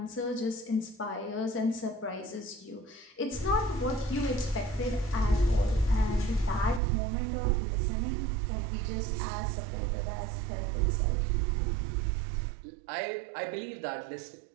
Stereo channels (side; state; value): left; drops out; at 6.8 s